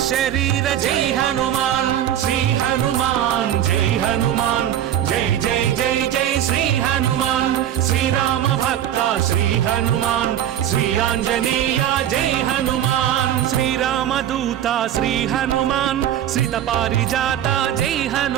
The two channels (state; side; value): quieter; left; 10.9 dB